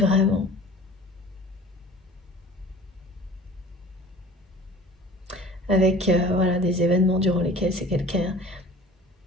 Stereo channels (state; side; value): normal; both; correlation 0.44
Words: Avec voilà, des événements durant lesquels c'est quelqu'un